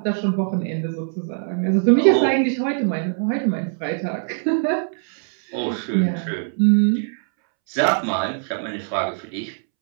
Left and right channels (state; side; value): silent; left; 64 dB below the other